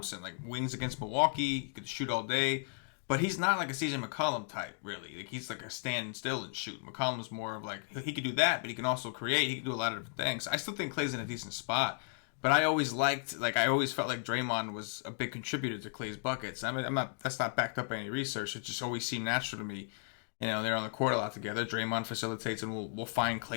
like wings against Milwaukee, he could shoot all day. But he's not like a CJ McCollum type, really. Like he's like a stand still and shoot. McCollum's more of like he can do that, but he can also create. He can do a lot of different things. I still think Klay's in a decent spot, but I always felt like Draymond was a big contributor to Klay's buckets. I mean, that's not backed up by any research. It just always seemed natural to me. You know, they're on the court a lot together. Draymond facilitates, and we'll find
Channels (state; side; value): silent; right; 55 dB below the other